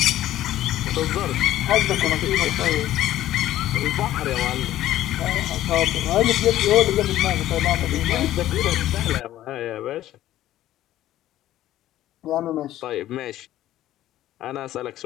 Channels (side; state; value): right; quieter; 13.6 dB